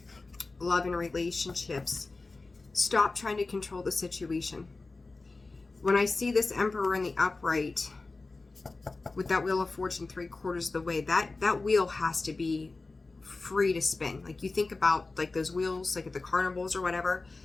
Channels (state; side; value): quieter; right; 3.6 dB